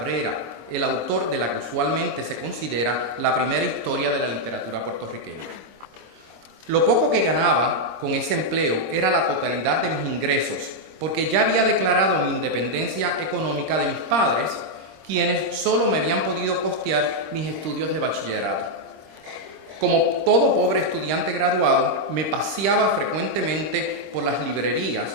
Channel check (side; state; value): left; late; 26 ms